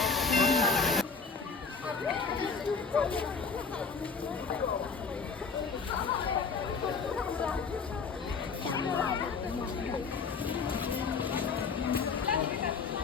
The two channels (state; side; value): quieter; right; 5.0 dB